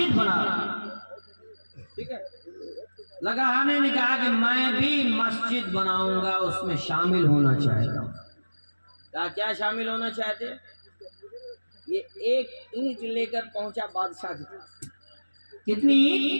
بنا، ٹھیک ہے؟ لکڑہارے نے کہا کہ میں بھی مسجد بناؤں گا، اس میں شامل ہونا چاہتا ہوں۔ کیا شامل ہونا چاہتے؟ یہ ایک اینٹ لے کر پہنچا بادشاہ کی طرف۔ کتنی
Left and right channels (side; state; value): both; inverted; correlation -1.00